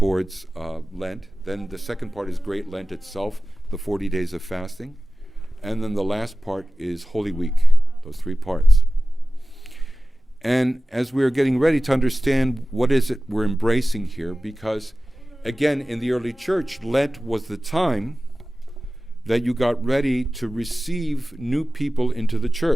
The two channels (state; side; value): normal; both; correlation 0.96